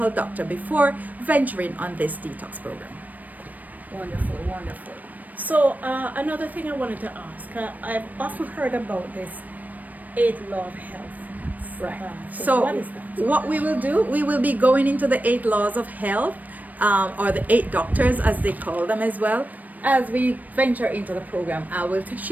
doctor before venturing on this detox program. Wonderful, wonderful. So another thing I wanted to ask, I've often heard about this 8 law of health. Right. So what is that? What we will do, we will be going into the 8 laws of health, or the 8 doctors as they call them as well. As we venture into the program,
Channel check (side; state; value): left; late; 0.080 ms